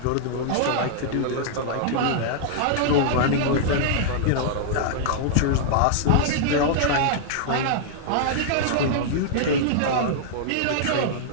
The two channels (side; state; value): both; different; correlation -0.01